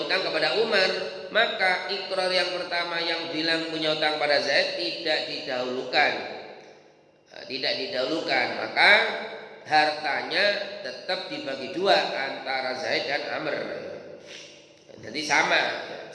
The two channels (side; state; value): both; identical; correlation 1.00